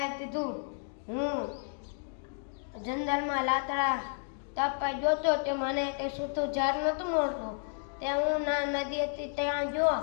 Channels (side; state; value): right; silent; digital silence